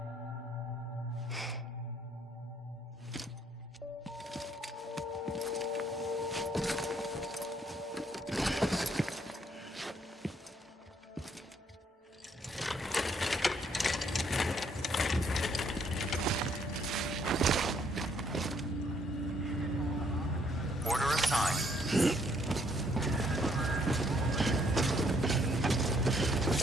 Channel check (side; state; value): both; normal; correlation 0.68